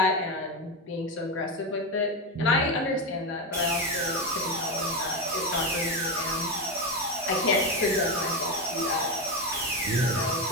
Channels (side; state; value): both; normal; correlation 0.14